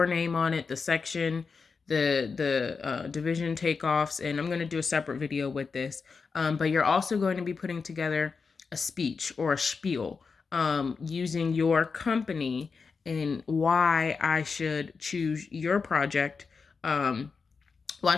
name on it, the section, the division takeoffs, and I'm going to do a separate video with this. But you're also going to be putting together a speech or a spiel using your company and why I should choose your project. Why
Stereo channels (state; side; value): quieter; right; 5.0 dB